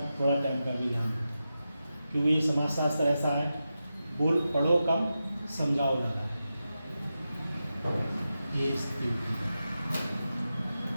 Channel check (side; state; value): both; inverted; correlation -0.91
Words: थोड़ा टाइम का भी ध्यान रखें, क्योंकि ये समाजशास्त्र ऐसा है, बोल पढ़ो कम समझाओ ज़्यादा। ये स्थिति